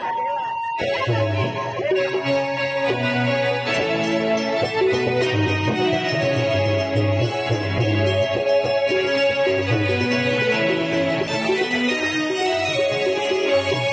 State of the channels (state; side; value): identical; both; correlation 1.00